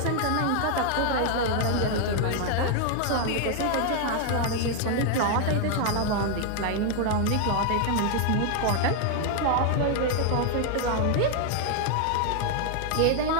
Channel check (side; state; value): both; different; correlation 0.00